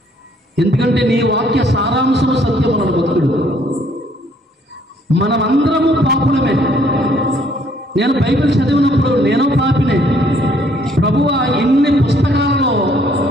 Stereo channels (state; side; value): normal; both; correlation 0.64